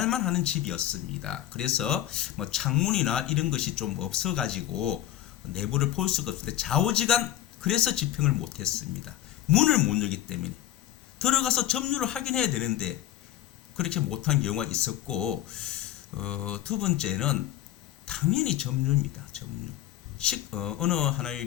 하는 집이었습니다. 그래서 창문이나 이런 것이 좀 없어가지고 내부를 볼 수가 없는데 좌우지간 그래서 집행을 못했습니다. 문을 못 열기 때문에 들어가서 점유를 확인해야 되는데 그렇게 못한 경우가 있었고, 두 번째는 당연히 점유입니다. 점유. 어느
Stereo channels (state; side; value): quieter; right; 12.8 dB